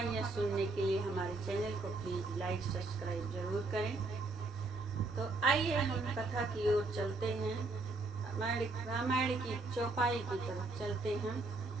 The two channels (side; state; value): left; quieter; 3.4 dB